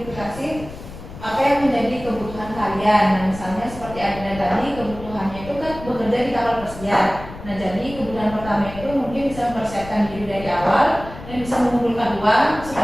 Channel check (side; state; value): left; noise; rumble, 14 dB below the sound